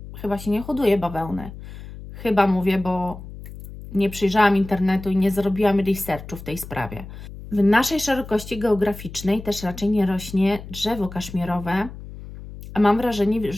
chyba się nie hoduje bawełny. Chyba mówię, bo nie przyjrzałam internetu i nie zrobiłam researchu w tej sprawie. W naszej szerokości geograficznej też raczej nie rośnie drzewo kaszmirowe, a mam wrażenie,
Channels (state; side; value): noise; left; hum, 13 dB below the sound